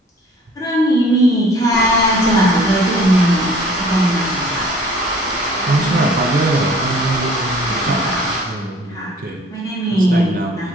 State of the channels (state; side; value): normal; both; correlation 0.52